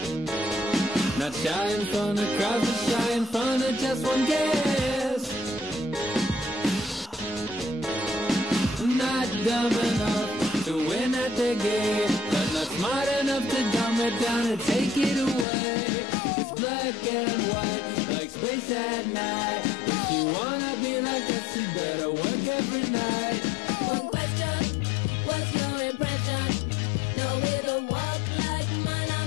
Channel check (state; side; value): drops out; right; at 15.5 s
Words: Not shy in front of crowds, but shy in front of just one guest. Not dumb enough to win at the game, but not smart enough to dumb it down and take it away. It's black and white, like space at night. If you wanna be like us, you better work every night. One question, what's your impression? No way to walk like mine,